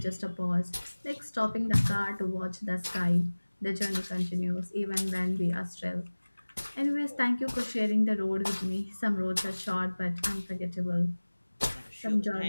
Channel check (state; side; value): inverted; both; correlation -1.00